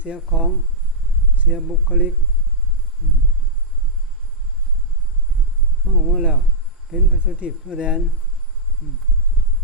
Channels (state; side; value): normal; both; correlation -0.09